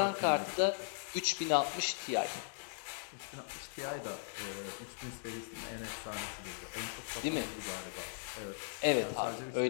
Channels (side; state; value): right; silent; digital silence